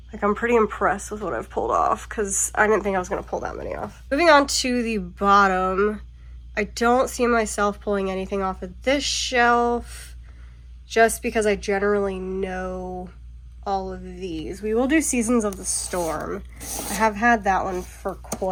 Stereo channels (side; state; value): both; identical; correlation 1.00